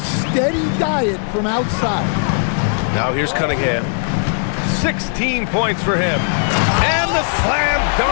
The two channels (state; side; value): silent; right; digital silence